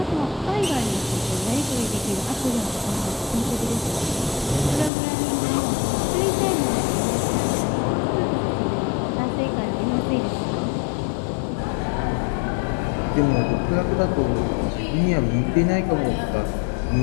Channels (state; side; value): drops out; right; at 4.9 s